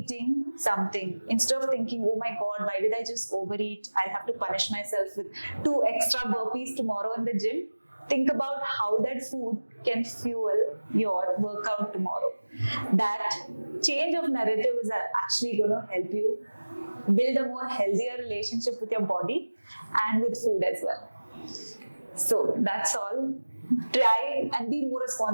something, instead of thinking, oh my God, why did I just overeat? I'll have to punish myself with 2 extra burpees tomorrow in the gym. Think about how that food can fuel your workout tomorrow. That change of narrative is actually going to help you build a more healthier relationship with your body and with food as well. So that's all. Try and be more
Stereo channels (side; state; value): both; inverted; correlation -1.00